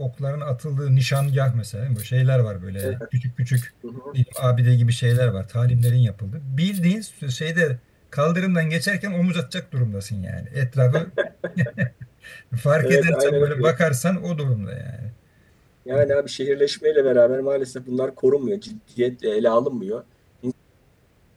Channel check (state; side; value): identical; both; correlation 1.00